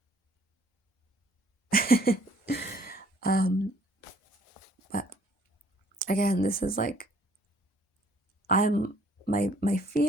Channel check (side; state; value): both; normal; correlation 0.60